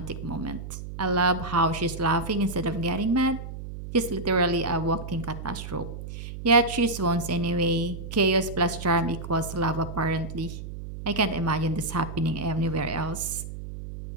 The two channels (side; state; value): right; noise; hum, 9 dB below the sound